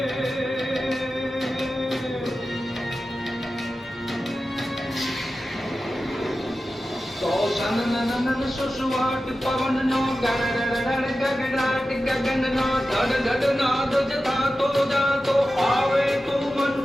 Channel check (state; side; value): normal; both; correlation 0.93